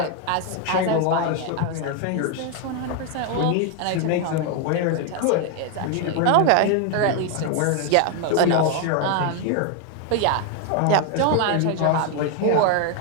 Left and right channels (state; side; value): different; both; correlation 0.01